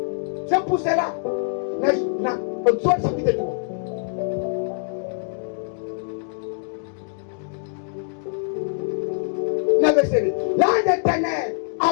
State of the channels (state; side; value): silent; right; digital silence